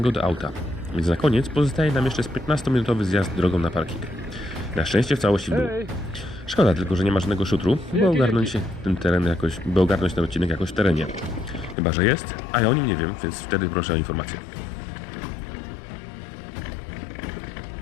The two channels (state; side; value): drops out; right; at 11.8 s